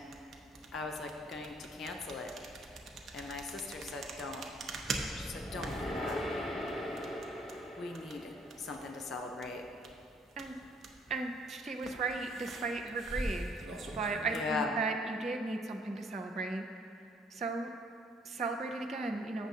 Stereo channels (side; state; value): both; normal; correlation 0.63